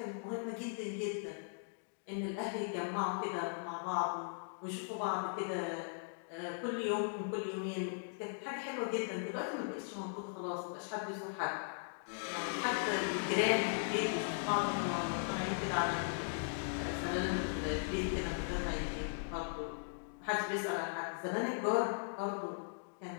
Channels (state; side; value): silent; right; digital silence